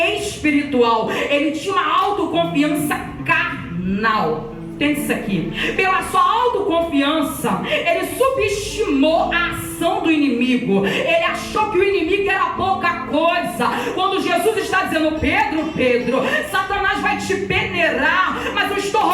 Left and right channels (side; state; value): both; identical; correlation 1.00